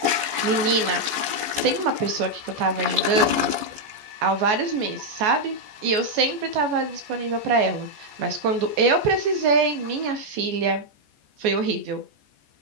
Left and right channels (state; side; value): late; left; 14 ms